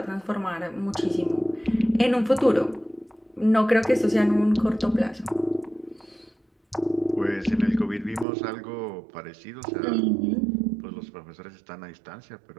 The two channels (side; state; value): left; drops out; at 8.2 s